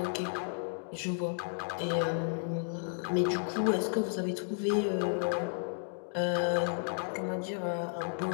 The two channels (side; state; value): right; silent; digital silence